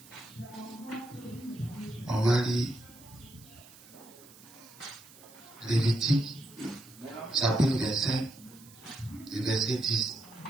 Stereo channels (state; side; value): noise; right; hiss, 21 dB below the sound